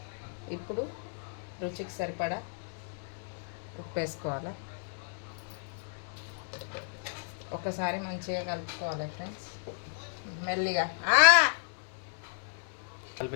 ఇప్పుడు రుచికి సరిపడా ఉప్పు వేసుకోవాలి. ఒకసారి మంచిగా కలుపుకోవాలి ఫ్రెండ్స్, మెల్లిగా.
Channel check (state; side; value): silent; right; digital silence